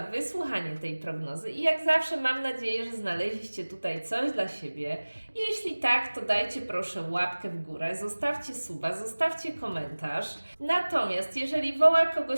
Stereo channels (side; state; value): both; inverted; correlation -1.00